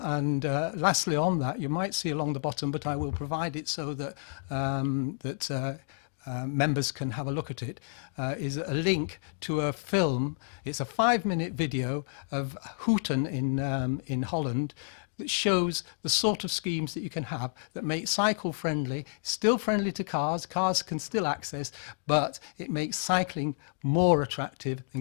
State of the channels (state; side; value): silent; right; digital silence